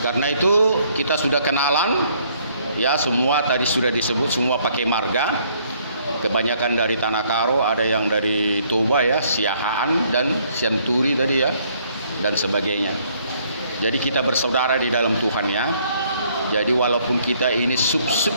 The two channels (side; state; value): both; inverted; correlation -0.65